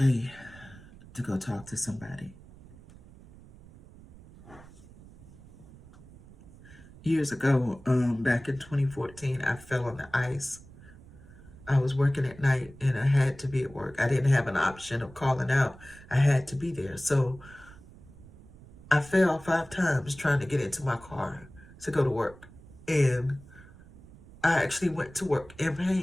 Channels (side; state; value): right; noise; rumble, 20 dB below the sound